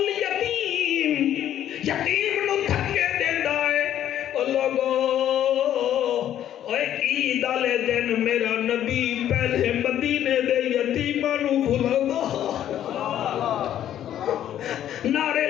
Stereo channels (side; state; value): right; quieter; 11.2 dB